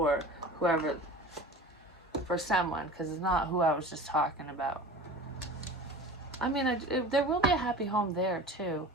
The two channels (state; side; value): normal; both; correlation 0.37